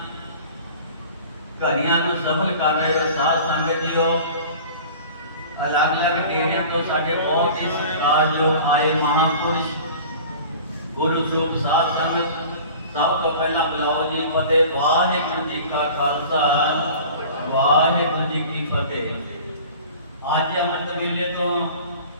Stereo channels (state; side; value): inverted; both; correlation -0.42